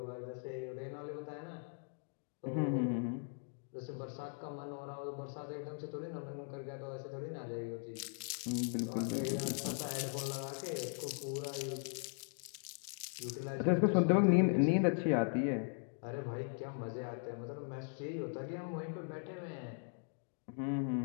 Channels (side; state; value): right; silent; 52 dB below the other